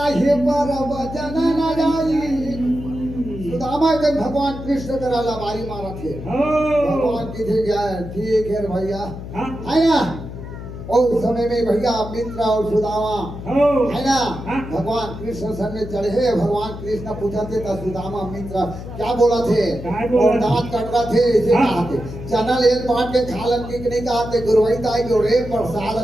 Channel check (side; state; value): left; noise; hum, 10 dB below the sound